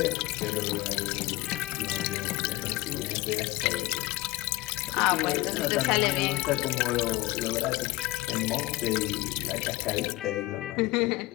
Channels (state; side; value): quieter; right; 19.7 dB